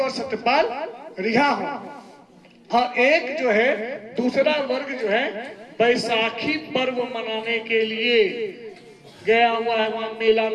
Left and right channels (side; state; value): both; identical; correlation 1.00